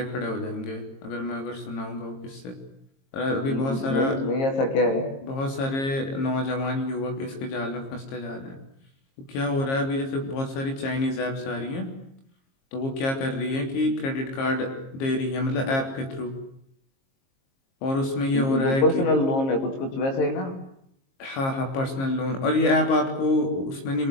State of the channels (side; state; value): right; late; 22 ms